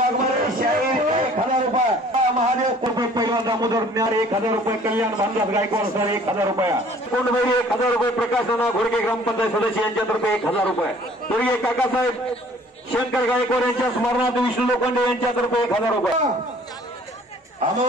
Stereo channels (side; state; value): both; normal; correlation 0.53